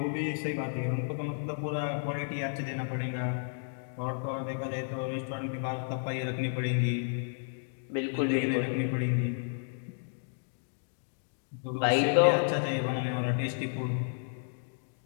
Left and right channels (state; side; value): silent; right; digital silence